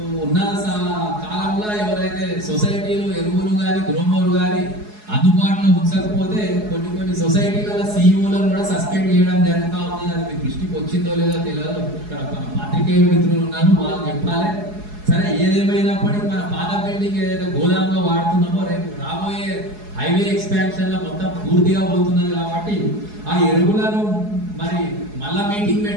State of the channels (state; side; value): late; left; 4.7 ms